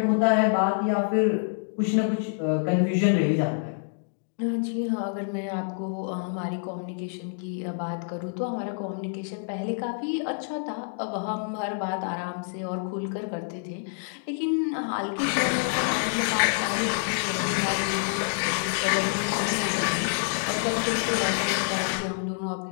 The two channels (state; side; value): silent; right; digital silence